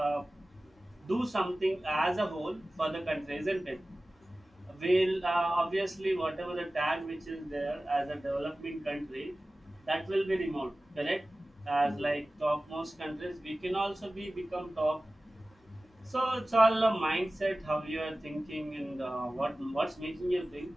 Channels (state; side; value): normal; both; correlation 0.97